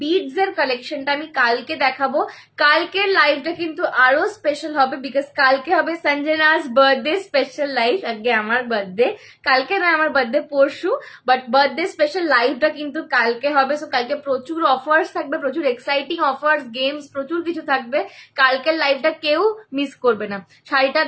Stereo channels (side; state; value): both; identical; correlation 1.00